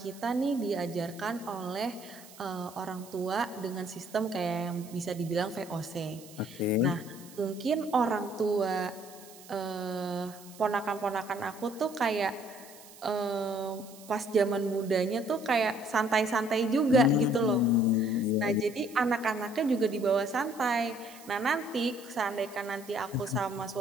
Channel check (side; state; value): right; noise; hiss, 20 dB below the sound